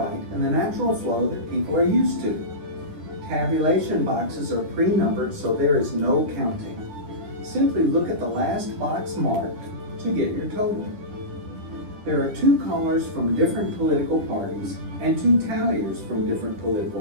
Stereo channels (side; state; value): left; late; 10 ms